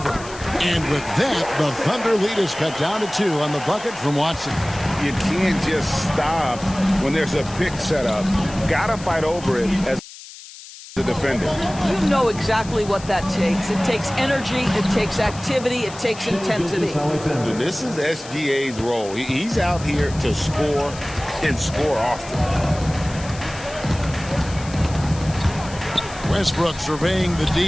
And with that, the Thunder lead is cut down to 2 on the bucket from Watson. You can't just stop when there's a pick set up. Gotta fight over it as a defender. You know exactly what that takes. It takes energy, it takes activity, it takes intensity. And this is SGA's role. He's out here to score and score often. Westbrook surveying the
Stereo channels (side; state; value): left; noise; hiss, 16 dB below the sound